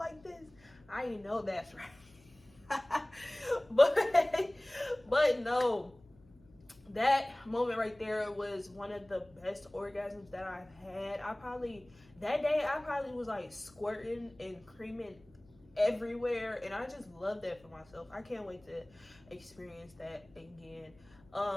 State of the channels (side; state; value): left; noise; hum, 27 dB below the sound